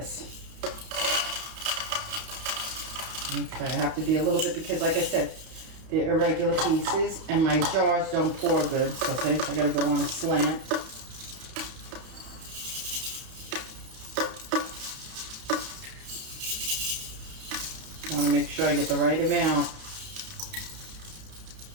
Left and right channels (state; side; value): late; left; 31 ms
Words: Okay, I have to be a little bit because, like I said, they're irregular pieces and my jars don't pour good. So I gotta go on a slant. I want to make sure I get the right amount.